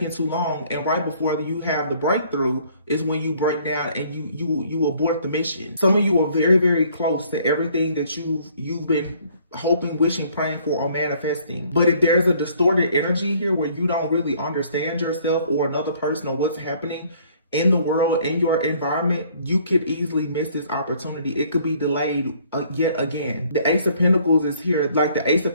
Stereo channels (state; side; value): inverted; both; correlation -0.60